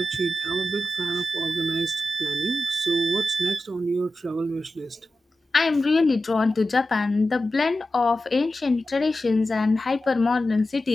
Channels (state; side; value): normal; both; correlation 0.92